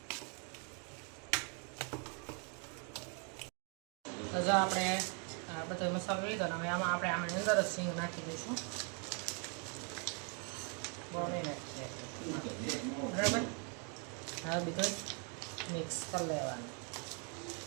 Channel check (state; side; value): quieter; left; 37.7 dB